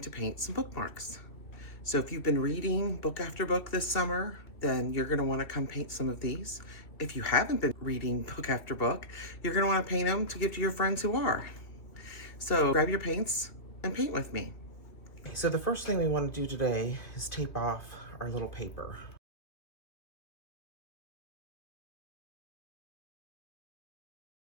to paint some bookmarks. So if you've been reading book after book this summer, then you're gonna wanna come paint some of these. If you haven't been reading book after book, you're gonna wanna paint them to give to your friends who are. So grab your paints and paint with me. So the first thing we wanna do today is tape off our little paper.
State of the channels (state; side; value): late; right; 2.9 ms